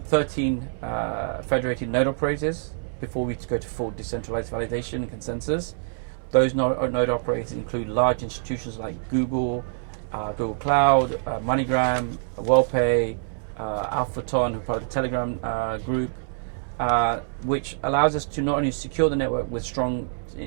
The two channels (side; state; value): left; silent; 61 dB below the other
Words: 13 federated node operators before we go to full decentralized validation and consensus. Those node operators include large institutions like Google, Google Cloud, MoneyGram, WellPay, Alphaton, who are part of the Telegram group, which allows us to not only secure the network with strong